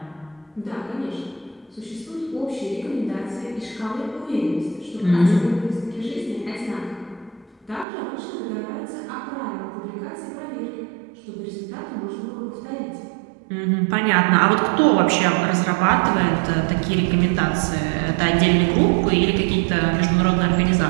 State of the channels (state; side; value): drops out; left; at 7.9 s